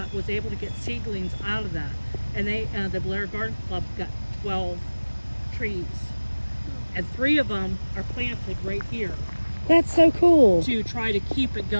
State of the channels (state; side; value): inverted; both; correlation -1.00